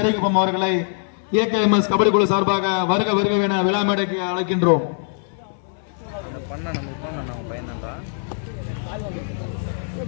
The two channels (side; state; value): right; silent; 64 dB below the other